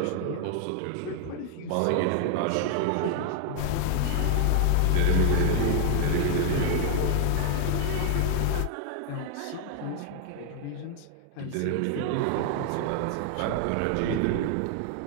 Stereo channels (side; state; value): both; different; correlation 0.00